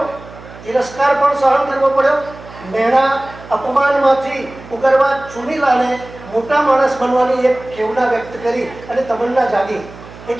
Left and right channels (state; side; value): noise; right; hum, 18 dB below the sound